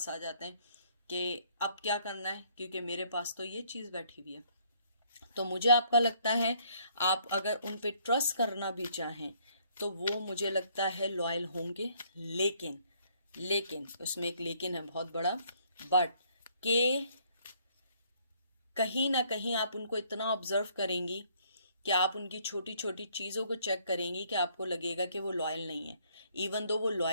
आ जाते हैं कि अब क्या करना है क्योंकि मेरे पास तो ये चीज़ बैठी हुई है। तो मुझे आपका लगता है आप अगर उन पे ट्रस्ट करना भी चाहें तो वो मुझे लगता है लॉयल होंगे, लेकिन लेकिन उसमें एक लेकिन है बहुत बड़ा, बट के कहीं ना कहीं आप उनको इतना ऑब्जर्व करेंगी कि आप उनकी छोटी छोटी चीज़ों को चेक करेंगी कि आपको लगेगा कि वो लॉयल नहीं है, इवन दो वो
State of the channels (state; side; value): inverted; both; correlation -0.65